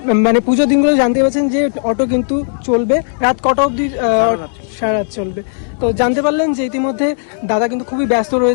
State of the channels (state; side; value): silent; right; digital silence